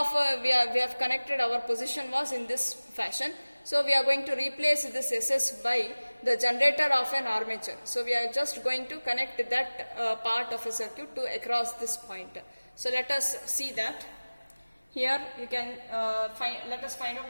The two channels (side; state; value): both; inverted; correlation -1.00